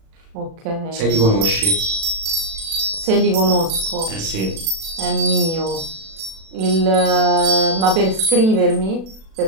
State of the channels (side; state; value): left; late; 36 ms